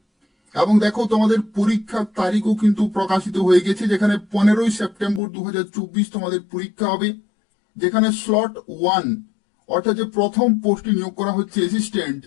এবং দেখো, তোমাদের পরীক্ষার তারিখও কিন্তু প্রকাশিত হয়ে গেছে, যেখানে 15 সেপ্টেম্বর 2024 তোমাদের পরীক্ষা হবে। যেখানে স্লট 1 অর্থাৎ যে প্রথম পোস্টে নিয়োগ করা হচ্ছে অ্যাসিস্ট্যান্ট,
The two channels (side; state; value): right; drops out; at 5.2 s